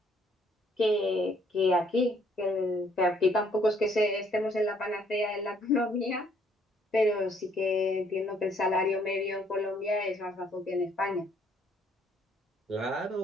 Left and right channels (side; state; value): both; normal; correlation 0.65